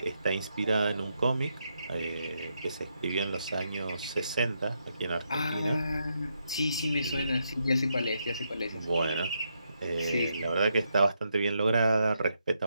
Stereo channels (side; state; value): both; inverted; correlation -0.81